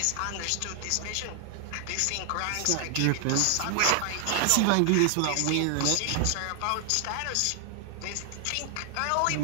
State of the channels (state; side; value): different; both; correlation 0.00